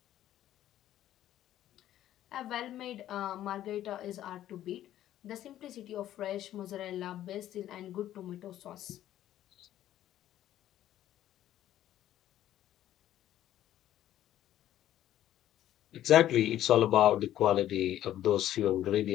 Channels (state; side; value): quieter; right; 12.5 dB